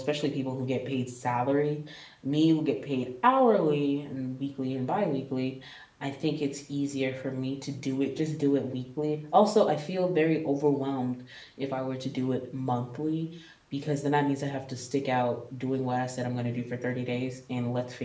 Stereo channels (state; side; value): identical; both; correlation 1.00